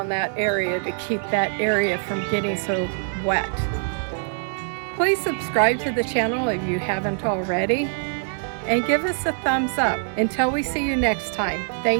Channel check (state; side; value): silent; left; digital silence